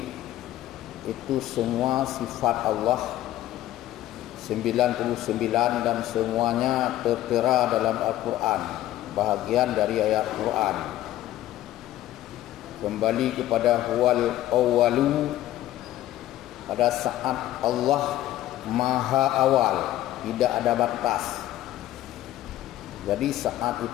itu semua sifat Allah 99 dan semuanya tertera dalam Al-Quran, bahagian dari ayat Quran. Kembali kepada huwal awwalu, pada saat Allah maha awal, tidak ada batas. Jadi saat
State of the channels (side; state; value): right; quieter; 14.2 dB